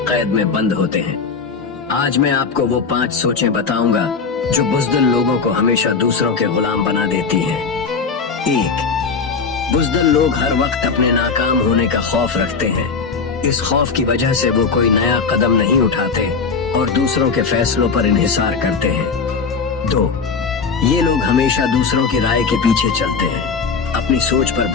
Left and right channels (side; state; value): right; quieter; 5.2 dB